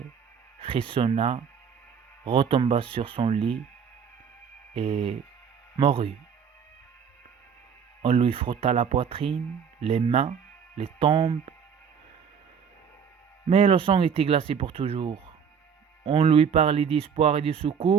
frissonna, retomba sur son lit et mourut. On lui frotta la poitrine, les mains, les tempes, mais le sang était glacé pour toujours. On lui parlait d'espoir et de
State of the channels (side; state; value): left; quieter; 7.1 dB